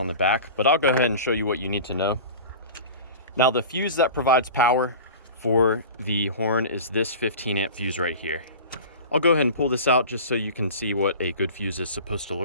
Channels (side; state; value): both; inverted; correlation -0.35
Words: the back, but I'll go ahead and show you what you need to know. Now, the fuse that provides power for the horn is this 15 amp fuse right here. I'll go ahead and pull this out just so you can see what a good fuse is supposed to